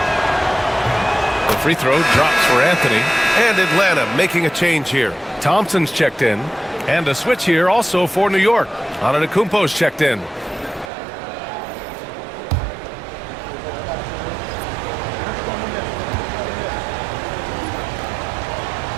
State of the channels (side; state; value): left; drops out; at 10.9 s